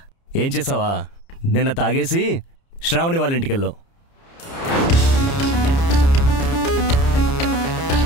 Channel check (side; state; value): right; late; 30 ms